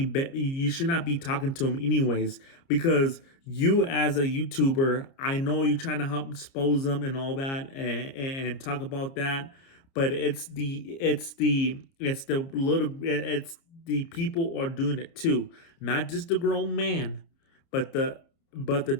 not be talking to them anyways, because you as a YouTuber, I know you're trying to help expose them and all that, and talk about that, but it's the people are doing it too, not just the grown man, but the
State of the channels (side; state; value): right; late; 30 ms